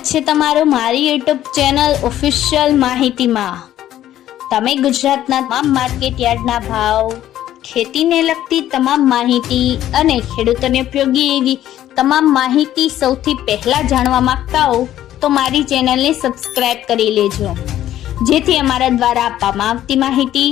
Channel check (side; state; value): right; quieter; 12.5 dB